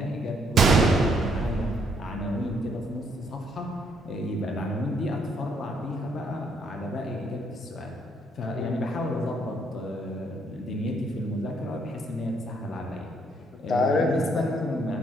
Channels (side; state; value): both; normal; correlation 0.70